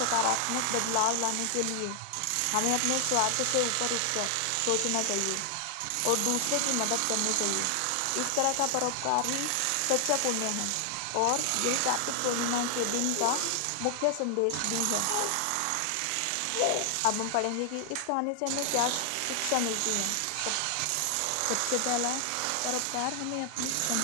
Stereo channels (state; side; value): different; both; correlation 0.00